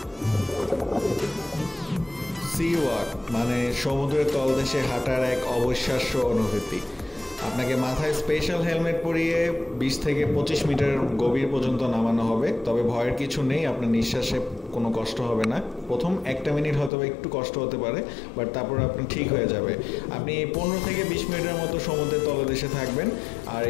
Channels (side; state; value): right; drops out; at 16.9 s